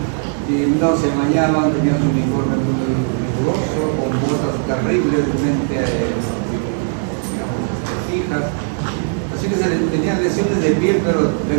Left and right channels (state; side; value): silent; left; 67 dB below the other